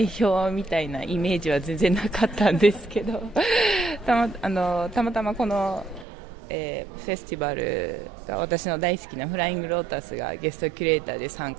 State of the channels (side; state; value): left; drops out; at 6.1 s